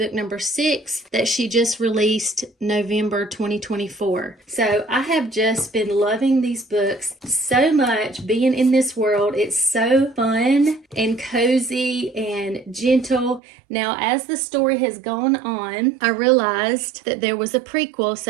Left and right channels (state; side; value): drops out; left; at 13.4 s